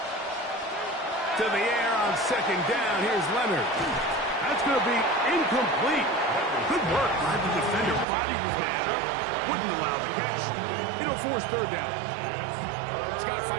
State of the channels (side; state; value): left; drops out; at 8.1 s